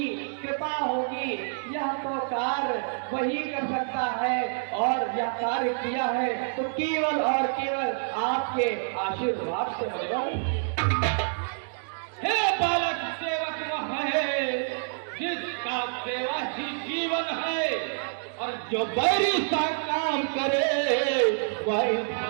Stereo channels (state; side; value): silent; left; digital silence